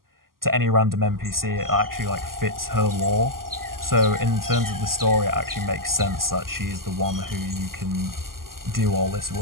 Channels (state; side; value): late; left; 0.92 ms